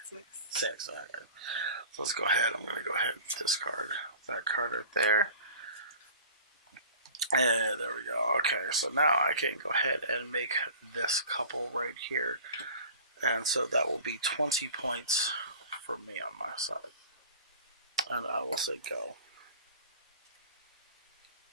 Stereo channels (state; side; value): inverted; both; correlation -0.41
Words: 6. 6, alright. So let's go ahead. I'm going to go ahead and discard that card right there. And there we go. Okay, so now I can go ahead and make this couple right here. And so that will be 20 points for me on my side. And I will say go.